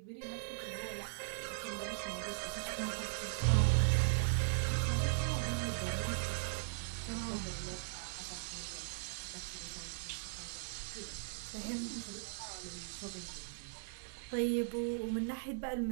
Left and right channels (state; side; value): silent; left; digital silence